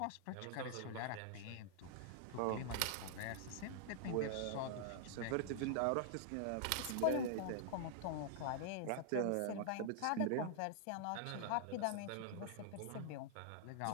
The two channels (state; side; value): different; both; correlation -0.01